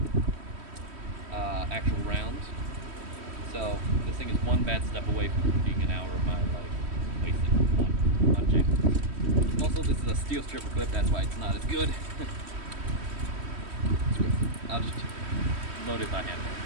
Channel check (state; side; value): late; left; 3.1 ms